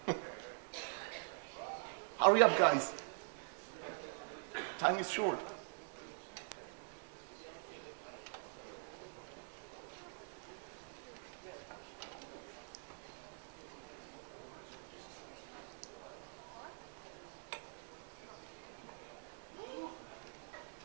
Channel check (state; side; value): silent; left; digital silence